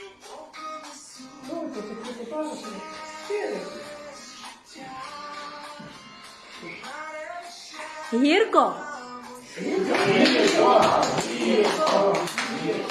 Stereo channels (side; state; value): both; identical; correlation 1.00